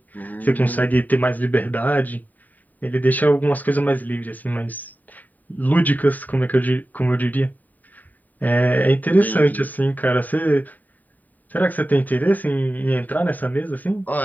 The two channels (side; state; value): right; late; 0.083 ms